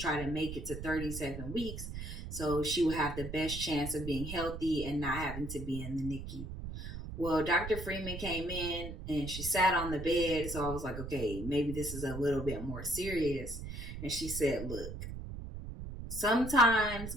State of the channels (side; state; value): right; noise; rumble, 8 dB below the sound